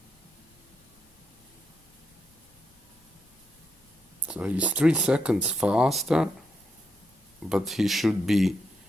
So he's 3 seconds faster, but he should be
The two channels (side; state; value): both; normal; correlation 0.82